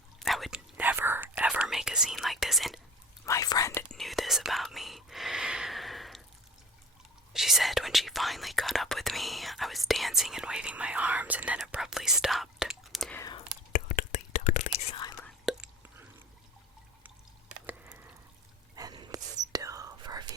I would never, ever make a scene like this, and my friend knew this about me. She said when she finally caught up with me, I was dancing and waving my arms and then abruptly stopped. Totally silent. And still for a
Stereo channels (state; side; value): normal; both; correlation 0.41